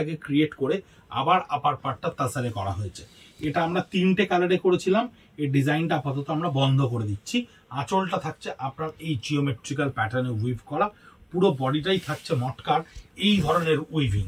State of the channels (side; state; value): both; identical; correlation 1.00